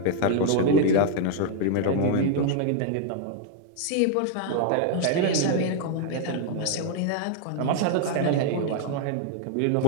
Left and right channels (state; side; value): different; both; correlation -0.01